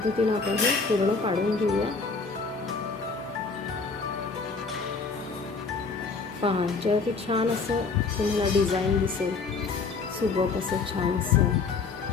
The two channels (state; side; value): quieter; right; 4.6 dB